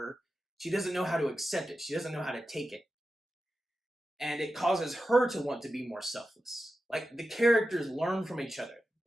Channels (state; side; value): normal; both; correlation 0.92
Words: She doesn't know how to accept it. She doesn't know how to take it. And it causes her to want to be more selfless. Like, the characters learn from each other.